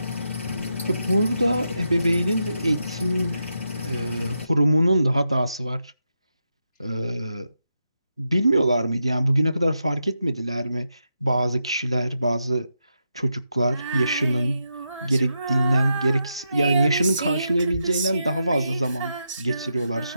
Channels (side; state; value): both; inverted; correlation -0.85